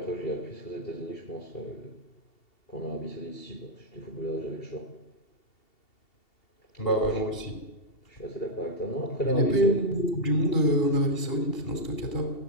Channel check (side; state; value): right; late; 2.7 ms